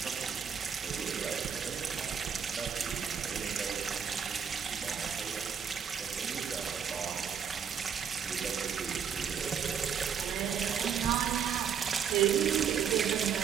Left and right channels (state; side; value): quieter; left; 7.4 dB